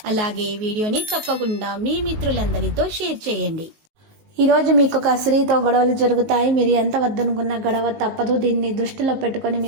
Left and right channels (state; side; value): late; left; 19 ms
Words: అలాగే ఈ వీడియోని తప్పకుండా మీ మిత్రులందరితో షేర్ చేయండి. ఈ రోజు మీకు ఒక స్త్రీతో గొడవలు జరుగుతాయి. మీరు ఎంత వద్దనుకున్న గొడవ తప్పదు. దీన్ని దృష్టిలో పెట్టుకొని